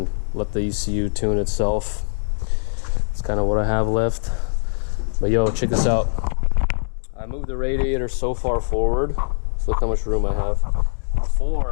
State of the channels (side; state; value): right; silent; 64 dB below the other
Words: let the ECU tune itself. That's kind of what I have left. But yo, check this out. I moved the radiator so far forward. So look how much room I have.